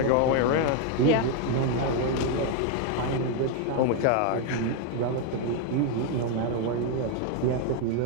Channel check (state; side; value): different; both; correlation 0.01